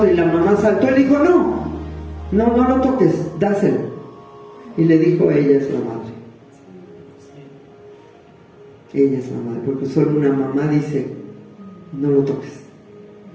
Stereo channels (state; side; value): identical; both; correlation 1.00